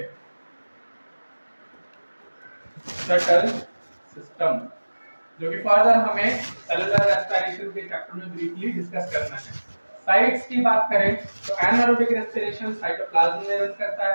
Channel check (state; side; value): inverted; both; correlation -1.00